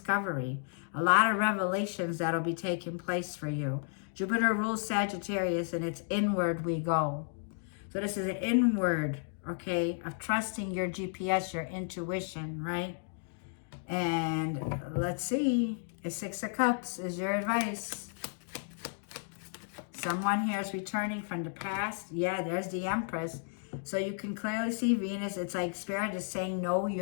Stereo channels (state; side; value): silent; right; digital silence